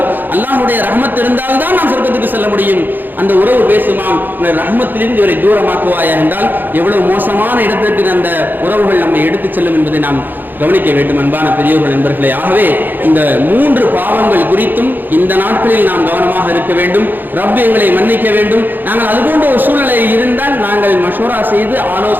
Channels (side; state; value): left; late; 0.089 ms